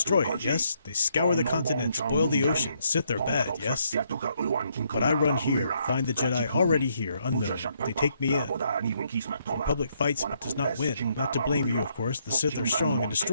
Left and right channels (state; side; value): inverted; both; correlation -0.73